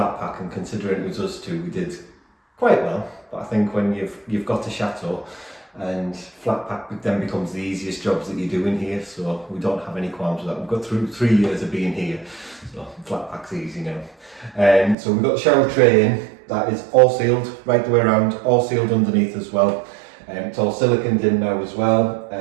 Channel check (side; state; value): left; drops out; at 15.0 s